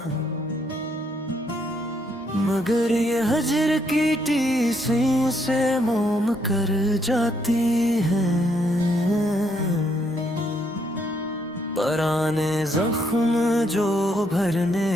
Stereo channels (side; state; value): both; normal; correlation 0.73